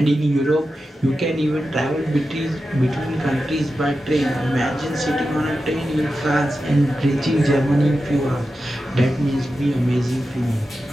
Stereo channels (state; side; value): normal; both; correlation 0.91